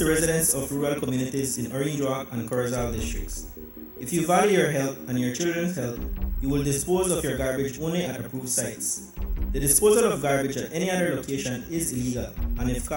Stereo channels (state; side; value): identical; both; correlation 1.00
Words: residents of rural communities in Orange Rock and Corozal districts. If you value your health and your children's health, you will dispose of your garbage only at approved sites. The disposal of garbage at any other location is illegal, and if